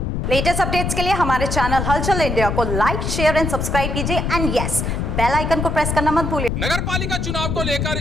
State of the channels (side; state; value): left; noise; rumble, 1 dB below the sound